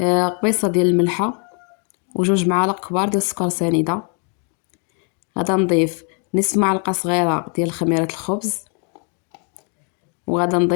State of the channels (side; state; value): right; quieter; 39.4 dB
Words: قبيصه ديال الملحه وجوج معالق كبار ديال السكر سنيده. غادا نضيف نصف معلقه صغيره ديال خميره الخبز، وغادا